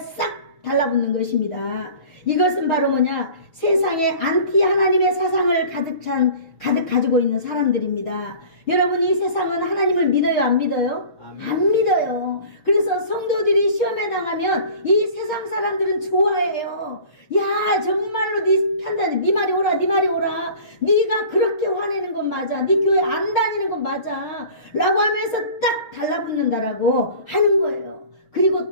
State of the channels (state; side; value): late; right; 6.6 ms